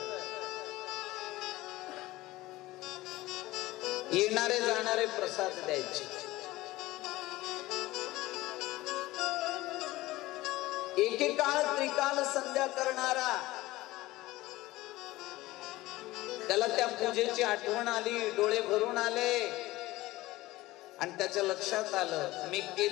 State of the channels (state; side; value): quieter; right; 18.3 dB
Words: येणारे जाणारे प्रसाद द्यायचे. एकेकाळ त्रिकाल संध्या करणारा, त्याला त्या पूजेची आठवण आली, डोळे भरून आले आणि त्याच्या लक्षात आलं मी